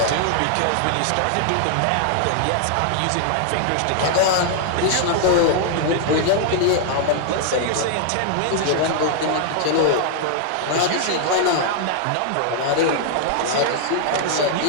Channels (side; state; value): both; different; correlation 0.00